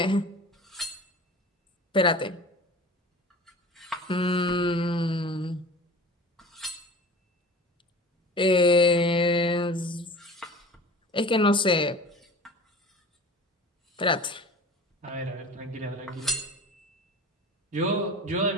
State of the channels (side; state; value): both; normal; correlation 0.40